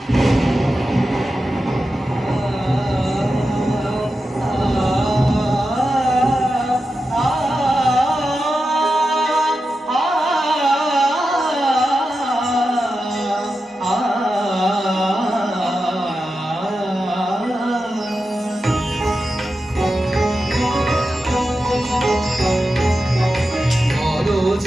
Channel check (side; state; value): both; normal; correlation 0.90